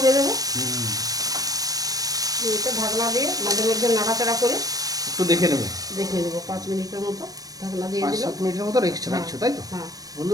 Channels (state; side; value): late; left; 0.18 ms